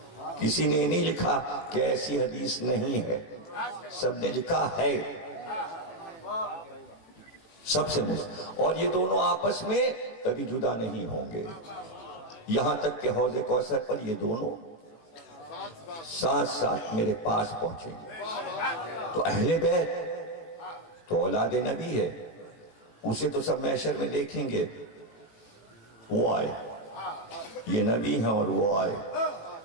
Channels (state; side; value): late; right; 18 ms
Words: کسی نے نہیں لکھا کہ ایسی حدیث نہیں ہے، سب نے لکھا ہے، سب سے مستند، اور یہ دونوں آپس میں کبھی جدا نہیں ہوں گے، یہاں تک کہ حوض کوثر پر یہ دونوں ساتھ ساتھ میرے پاس پہنچیں گے۔ تو اہل بیت تو اولاد نبی ہے، اسے تو سب محشر میں دیکھیں گے، وہ آئے، یہ نبی ہیں اور وہ آئے،